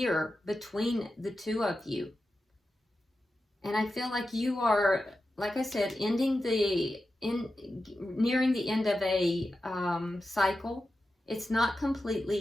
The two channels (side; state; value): both; normal; correlation 0.91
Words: between the two of you. And I feel like you are, like I said, nearing the end of a cycle. It's not